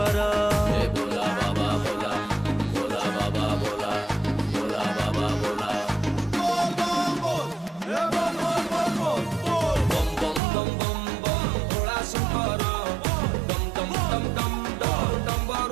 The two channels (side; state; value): left; drops out; at 10.4 s